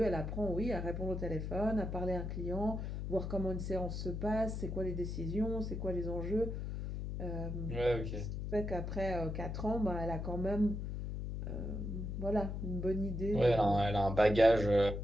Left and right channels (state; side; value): noise; left; hum, 4 dB below the sound